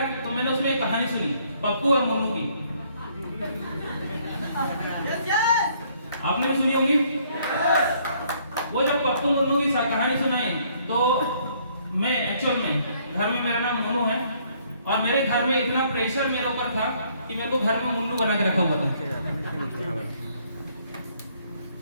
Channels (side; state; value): both; inverted; correlation -0.65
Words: तो मैंने उसमें एक कहानी सुनी, पप्पू और मुन्नू की। आपने भी सुनी होगी। वो जब पप्पू मुन्नू की कहानी सुनाई तो मैं एक्चुअल में घर में, मेरा नाम मुन्नू है और मेरे घर में इतना प्रेशर मेरे ऊपर था कि मेरे को घर में मुन्नू बना के रखा हुआ था।